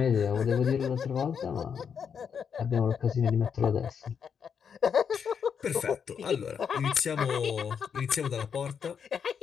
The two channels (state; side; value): quieter; right; 7.0 dB